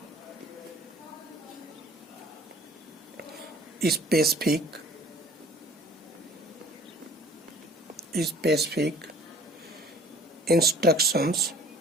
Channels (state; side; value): normal; both; correlation 0.51